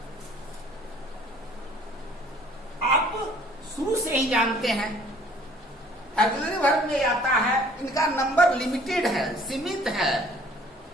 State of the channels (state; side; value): normal; both; correlation 0.56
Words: आप शुरू से ही जानते हैं ऑक्सिलरी वर्ब में आता है, इनका नंबर लिमिटेड है, सीमित है।